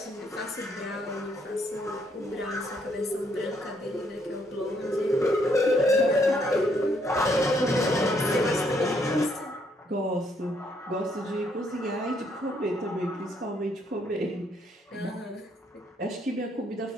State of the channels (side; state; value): both; normal; correlation 0.71